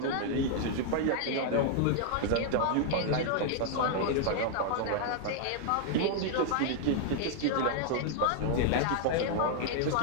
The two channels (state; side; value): different; both; correlation -0.01